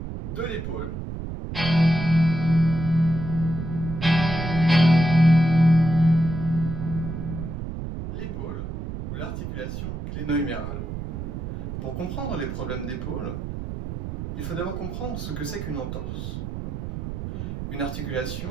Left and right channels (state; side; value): noise; right; rumble, 6 dB below the sound